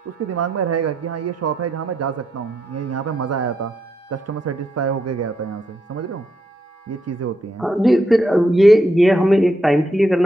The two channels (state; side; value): normal; both; correlation 0.80